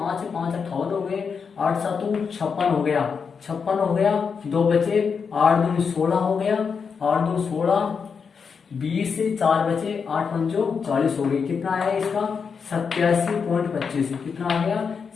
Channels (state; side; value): quieter; right; 5.9 dB